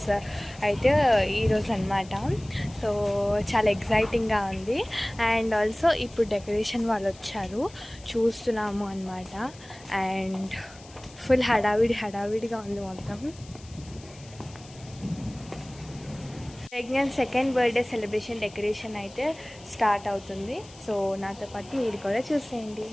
అయితే ఈరోజు అనమాట. సో చాలా ఎగ్జైటింగ్గా ఉంది. అండ్ ఆల్సో ఇప్పుడు డెకరేషన్ వాళ్ళు వచ్చారు, చూస్తున్నాము అనమాట. అండ్ ఫుల్ హడావిడిగా ఉంది మొత్తం. Pregnant second birthday celebration decoration అయితే స్టార్ట్ అవుతుంది. సో నాతో పాటు మీరు కూడా చూసేయండి.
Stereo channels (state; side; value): noise; left; hiss, 22 dB below the sound